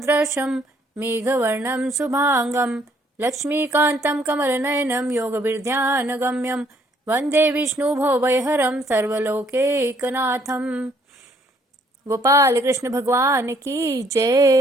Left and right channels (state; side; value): normal; both; correlation 0.65